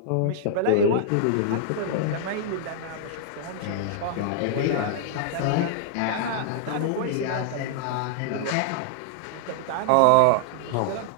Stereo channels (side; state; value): both; different; correlation -0.01